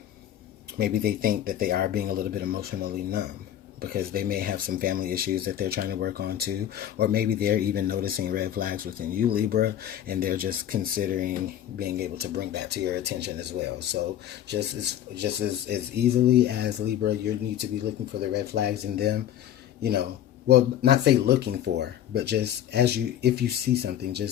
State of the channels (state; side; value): quieter; right; 11.1 dB